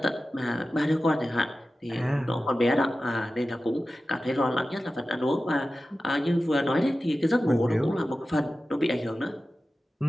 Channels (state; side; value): normal; both; correlation 0.94